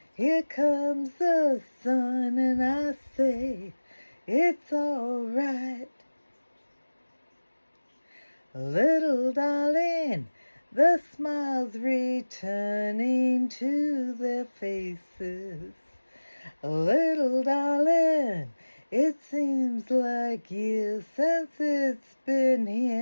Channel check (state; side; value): inverted; both; correlation -1.00